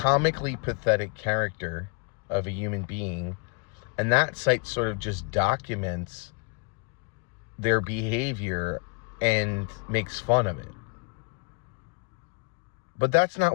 pathetic character of a human being, and that site sort of just documents their behavior and makes fun of it. But that's not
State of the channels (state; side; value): quieter; right; 34.7 dB